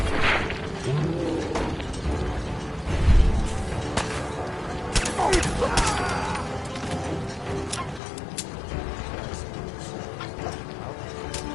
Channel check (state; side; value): drops out; right; at 8.0 s